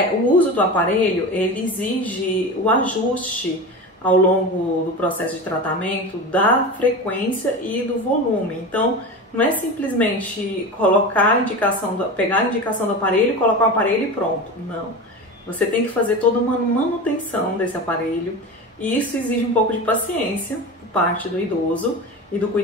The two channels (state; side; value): normal; both; correlation 0.27